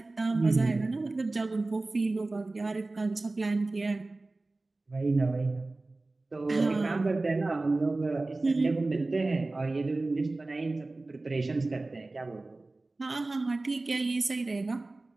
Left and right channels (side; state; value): left; quieter; 3.1 dB